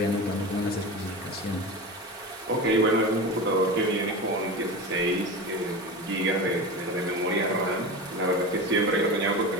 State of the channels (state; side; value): normal; both; correlation 0.27